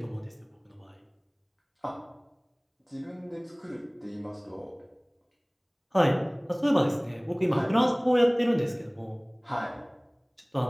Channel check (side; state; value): both; identical; correlation 1.00